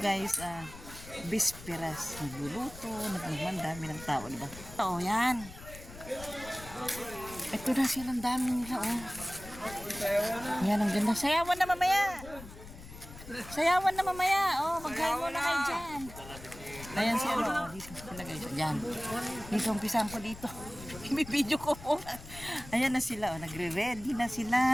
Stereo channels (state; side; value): noise; left; rumble, 15 dB below the sound